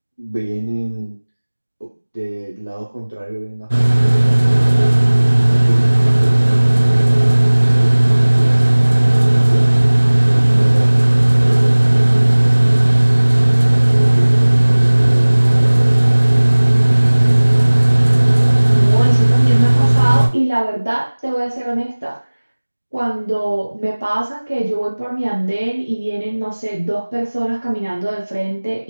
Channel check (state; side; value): inverted; both; correlation -1.00